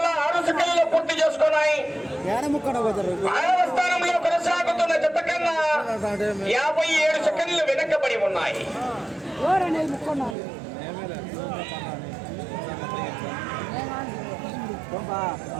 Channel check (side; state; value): left; drops out; at 10.4 s